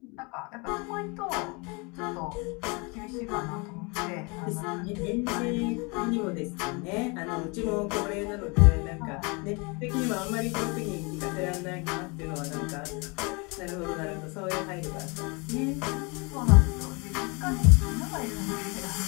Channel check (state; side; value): quieter; right; 29.6 dB